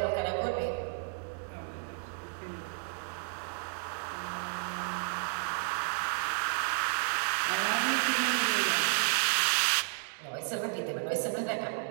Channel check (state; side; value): silent; left; 56 dB below the other